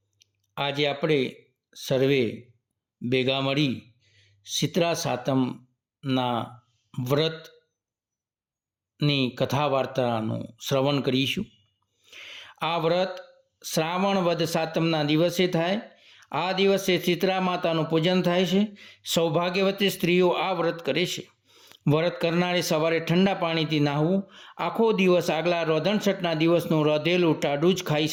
આજે આપણે સર્વે ભેગા મળી શીતળા સાતમના વ્રતની કથા વાર્તાનું શ્રવણ કરીશું। આ વ્રત શ્રાવણ વદ સાતમના દિવસે થાય। આ દિવસે શીતળા માતાનું પૂજન થાય છે। સૌભાગ્યવતી સ્ત્રીઓ આ વ્રત કરે છે। વ્રત કરનારે સવારે ઠંડા પાણીથી નાહવું। આખો દિવસ આગલા રોધણછઠના દિવસનું રોધેલું ટાઢું જ ખાઈ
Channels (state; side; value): identical; both; correlation 1.00